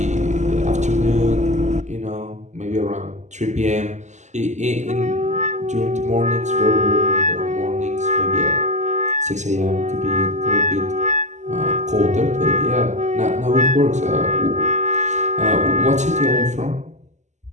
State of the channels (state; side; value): late; left; 0.34 ms